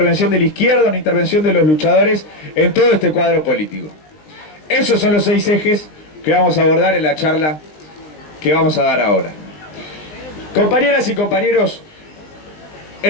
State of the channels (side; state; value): right; late; 20 ms